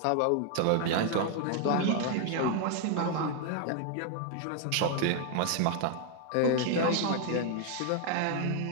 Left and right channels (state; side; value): different; both; correlation 0.00